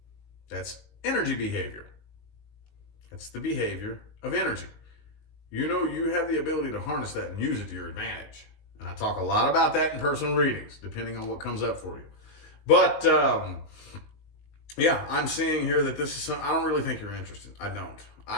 That's energy behavior. It's the behavior of energy. You know, you have the ability to harness that and use it to your advantage. And I talk a lot about that in personal readings, depending on what comes up for you. But, yeah, I'm seeing here that this is, I don't really think you're interested. I don't.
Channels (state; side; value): late; right; 19 ms